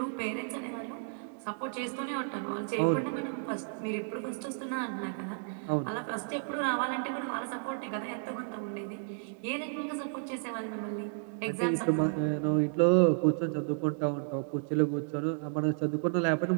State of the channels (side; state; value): left; silent; digital silence